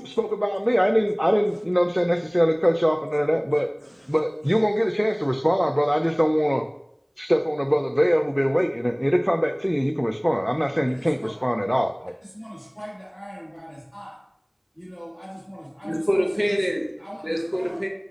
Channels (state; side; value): identical; both; correlation 1.00